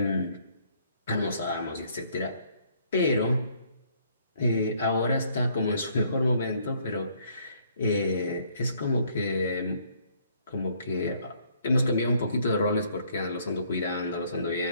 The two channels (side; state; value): both; inverted; correlation -0.64